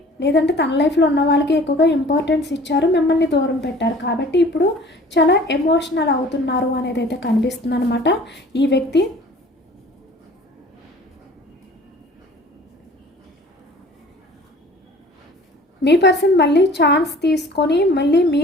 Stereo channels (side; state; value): both; normal; correlation 0.48